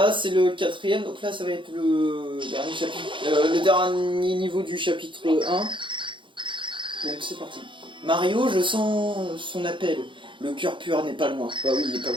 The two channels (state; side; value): late; left; 0.24 ms